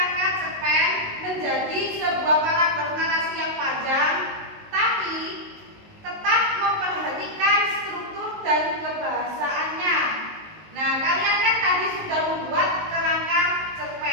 cerpen menjadi sebuah paragraf narasi yang panjang, tapi tetap memperhatikan struktur dan kebahasaannya. Nah, kalian kan tadi sudah membuat kerangka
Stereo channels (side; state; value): left; late; 19 ms